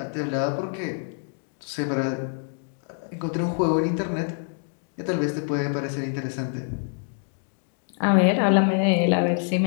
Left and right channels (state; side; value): silent; right; 57 dB below the other